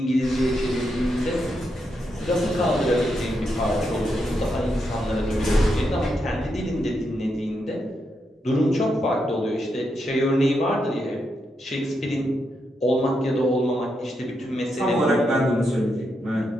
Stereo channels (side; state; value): both; normal; correlation 0.83